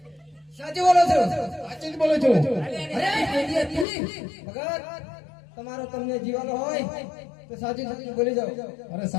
સાચું બોલો છો સાચું જ બોલું છું. અરે એરિયાથી ભગત તમારો તમને જીવાનો હોય તો સાચું સાચું બોલી જાઓ અરે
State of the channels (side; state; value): right; drops out; at 3.9 s